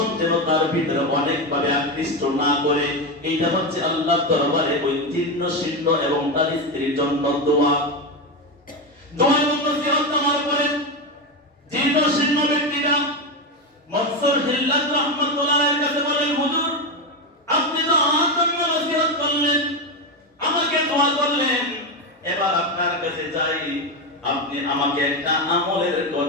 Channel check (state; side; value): normal; both; correlation 0.13